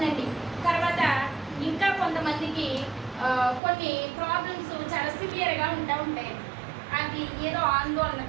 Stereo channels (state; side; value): drops out; left; at 3.6 s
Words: తర్వాత ఇంకా కొంతమందికి కొన్ని ప్రాబ్లమ్స్ చాలా సివియర్గా ఉంటాయి. అది ఏదో ఆందోళన